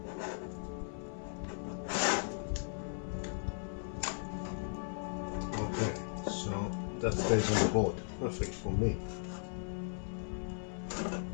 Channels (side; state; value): right; silent; 53 dB below the other